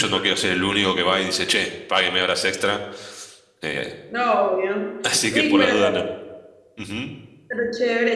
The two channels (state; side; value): identical; both; correlation 1.00